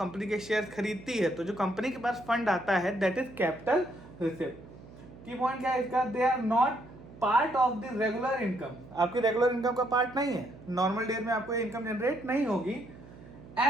के शेयर खरीदती है तो जो कंपनी के पास फंड आता है that is capital receipt. Key point क्या है इसका? They are not part of the regular income. आपकी रेगुलर इनकम का पार्ट नहीं है। नॉर्मल डेज में आपको इनकम जनरेट नहीं होगी।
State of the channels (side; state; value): right; noise; hum, 19 dB below the sound